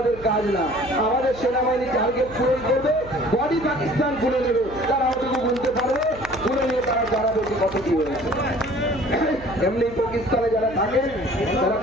কাজ না। আমাদের সেনাবাহিনী টার্গেট পূরণ করবে, বডি পাকিস্তান খুলে নেবে, তারা ওটুকু বলতে পারবে, খুলে নিয়ে তারা জানাবে কত কি হয়েছে। এমনি পাকিস্তানে যারা থাকেন তারা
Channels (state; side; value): noise; right; hum, 17 dB below the sound